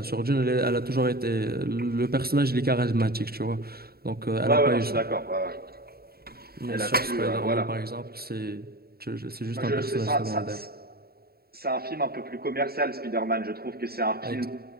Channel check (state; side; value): late; left; 0.45 ms